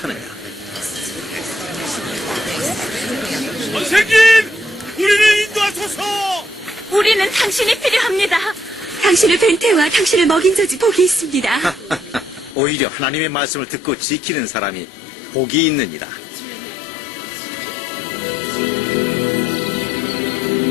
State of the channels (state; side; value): drops out; right; at 12.6 s